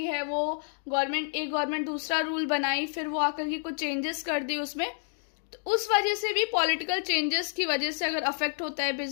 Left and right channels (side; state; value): right; silent; 58 dB below the other